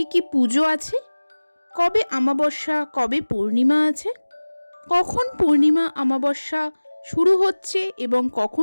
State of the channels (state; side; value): inverted; both; correlation -1.00